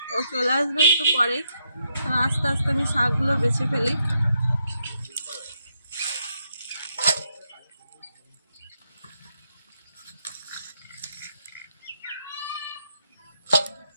ও চলে আসবে একটু পরেই। তো আস্তে আস্তে আমি শাকগুলো বেছে ফেলি।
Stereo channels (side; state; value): both; inverted; correlation -0.79